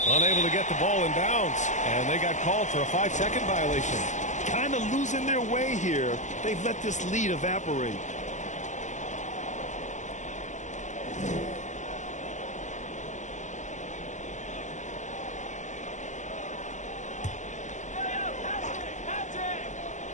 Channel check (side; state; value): right; late; 0.35 ms